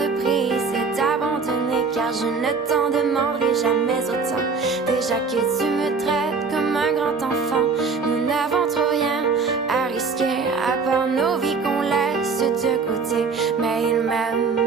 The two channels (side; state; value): left; quieter; 4.8 dB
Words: prise et d'abandonner, car je ne t'en demanderai jamais autant. Déjà que tu me traites comme un grand enfant, nous n'avons trop rien à risquer à part nos vies qu'on laisse de côté. Mais il